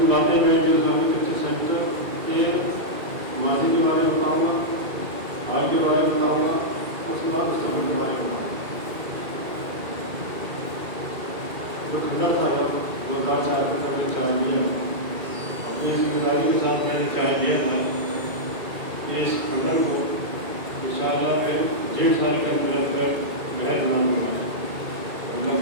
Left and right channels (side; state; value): left; late; 2.3 ms